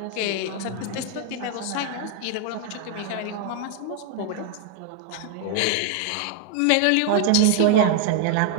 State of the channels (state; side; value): different; both; correlation 0.00